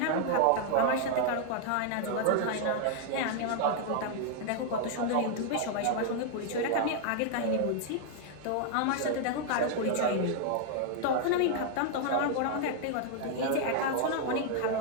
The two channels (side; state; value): both; different; correlation 0.00